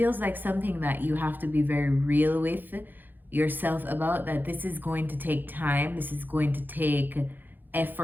like something that you have to be very real with yourself about, that this is going to take time, this is going to take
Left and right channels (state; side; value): late; left; 0.089 ms